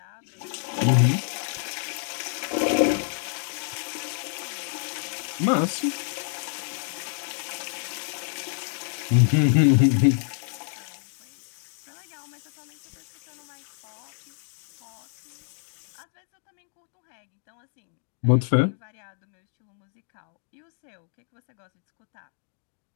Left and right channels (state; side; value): silent; right; 59 dB below the other